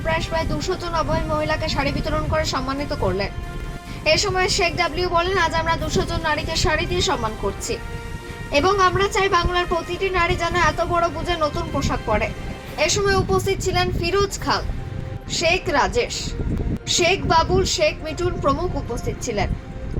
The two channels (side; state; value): both; identical; correlation 1.00